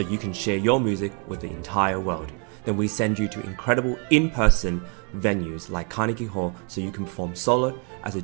you can share your music with the entire world. Then we send you to incredible in-person venues like Carnegie Hall so you can perform solo, as a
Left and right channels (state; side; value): quieter; left; 38.3 dB